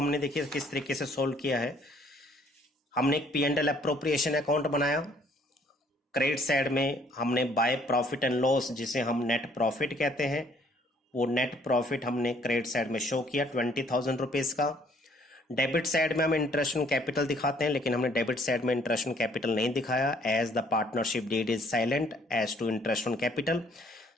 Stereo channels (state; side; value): normal; both; correlation 0.63